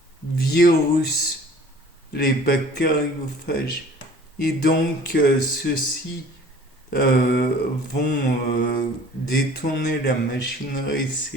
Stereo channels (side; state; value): both; normal; correlation 0.49